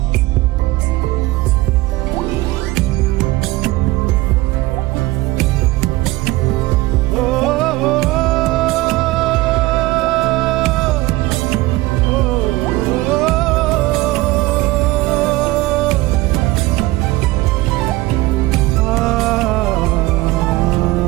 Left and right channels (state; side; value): quieter; left; 19.5 dB